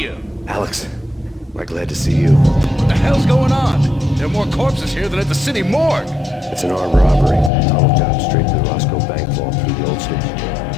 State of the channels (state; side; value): drops out; right; at 7.5 s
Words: Alex, am I glad to see you. What the hell's going on? There are more corpses here than at the city morgue. It's an armed robbery. Tunnel job straight to the Roscoe Bank vault through the old station.